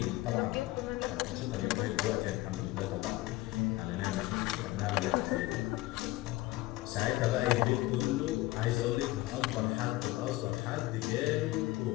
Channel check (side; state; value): right; quieter; 18.3 dB